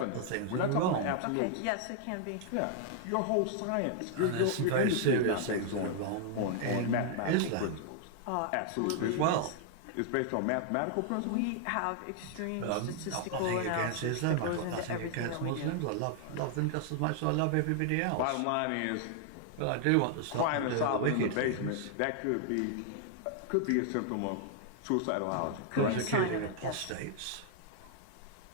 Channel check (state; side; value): different; both; correlation 0.00